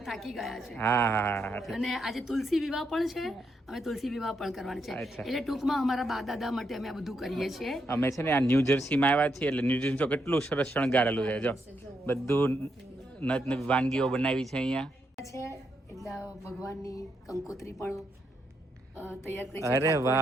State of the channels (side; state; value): both; normal; correlation 0.80